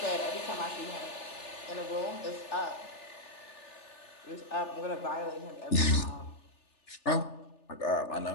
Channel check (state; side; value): late; right; 3.4 ms